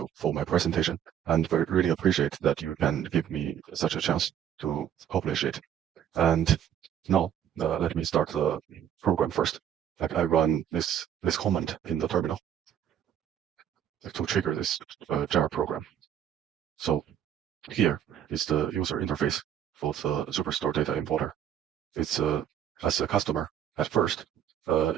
for my presentation and really appreciate that you can give me such a chance to publish it. And now let me start the program first. Like I run this command in the terminal to trigger this jar program. So here is the user interface for the Superstore data importer. It's as a customer at first,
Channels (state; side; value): quieter; left; 9.8 dB